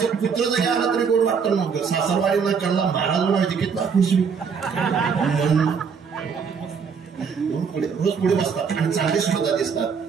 कुत्र जरी आला तरी गोड वाटतं. मग सासरवाडीला कळला महाराज म्हणायचे कितला खुश पुढे रोज पुढे बसतात आणि चांगले सुद्धा दिसतात.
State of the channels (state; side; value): quieter; left; 6.1 dB